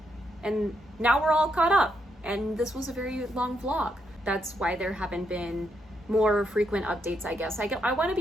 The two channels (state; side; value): normal; both; correlation 0.79